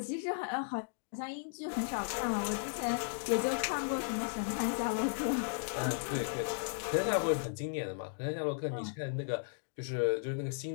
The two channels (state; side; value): silent; right; digital silence